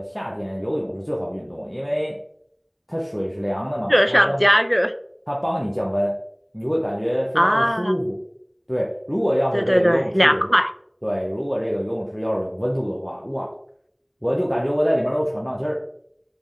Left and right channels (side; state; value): both; identical; correlation 1.00